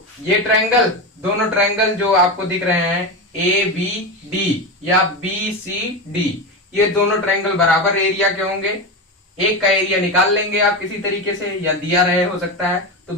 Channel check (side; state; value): both; normal; correlation 0.18